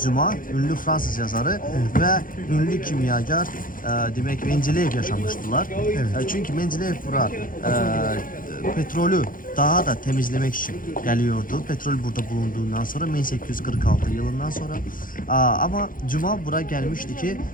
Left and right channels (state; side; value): late; right; 0.40 ms